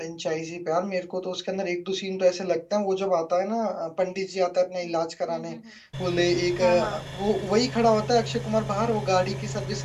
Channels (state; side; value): identical; both; correlation 1.00